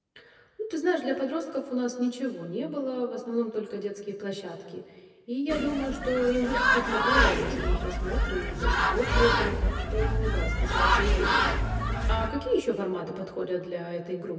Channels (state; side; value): identical; both; correlation 1.00